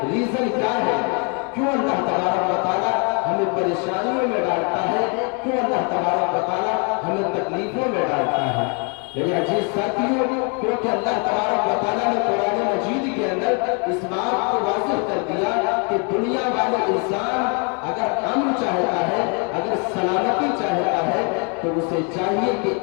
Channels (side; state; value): right; quieter; 36.2 dB